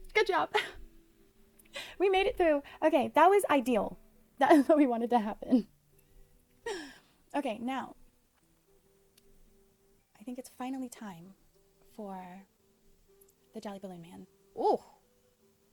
Good job. We made it through. Okay, that was ideal. That is what we wanted to happen. Okay, now, I think it's finally time for the Jolly Balloon Man. Ooh.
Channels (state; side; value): identical; both; correlation 1.00